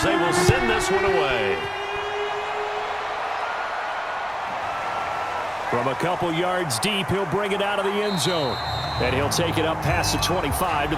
they will send this one away. From a couple yards deep, he'll bring it out of the end zone. And he'll take it up past the 25 to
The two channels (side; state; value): both; identical; correlation 1.00